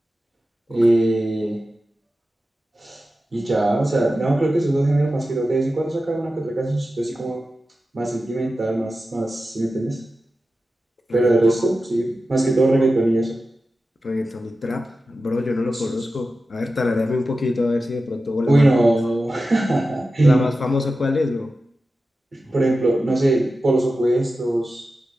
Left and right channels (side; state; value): both; normal; correlation 0.93